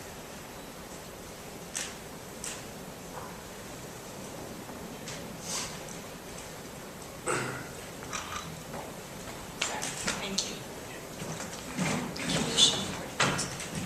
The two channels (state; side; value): identical; both; correlation 1.00